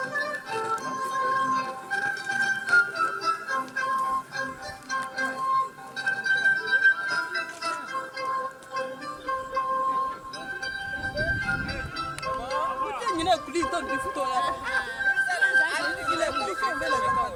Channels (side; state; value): both; identical; correlation 1.00